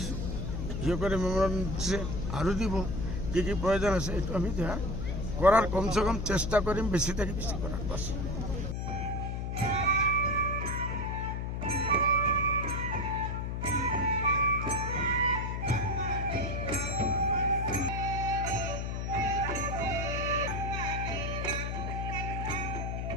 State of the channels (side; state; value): left; noise; hum, 3 dB below the sound